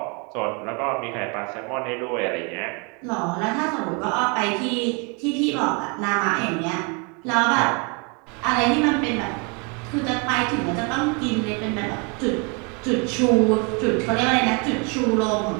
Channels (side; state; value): left; quieter; 33.2 dB